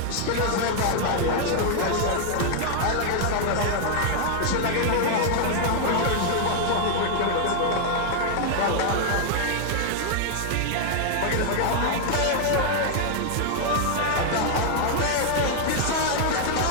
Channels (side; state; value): both; different; correlation 0.00